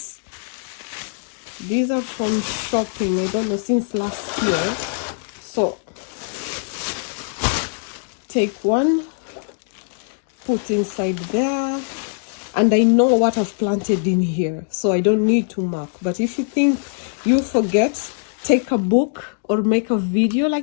these are from shopping, I don't know, since last year. So take one, put inside there, and I know what I've planted in here, so I don't need to mark. But if you think you forget, take a book or make a video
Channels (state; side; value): silent; right; digital silence